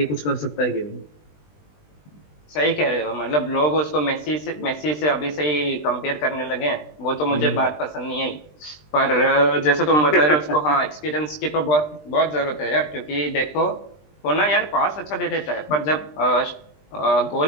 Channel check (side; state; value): right; late; 20 ms